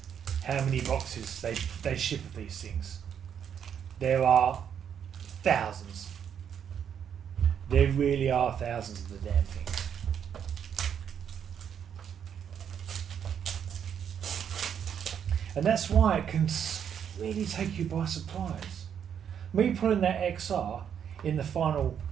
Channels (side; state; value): left; quieter; 8.3 dB